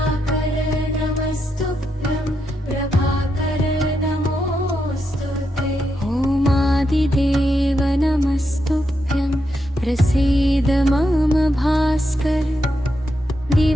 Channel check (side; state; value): both; normal; correlation 0.83